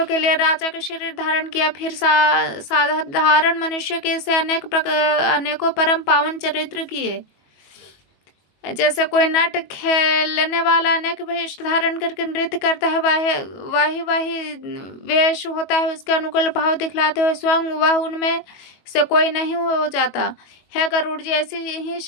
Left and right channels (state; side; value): late; right; 22 ms